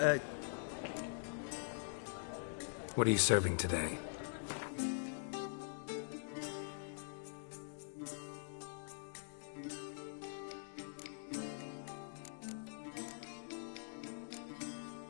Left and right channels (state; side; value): silent; right; digital silence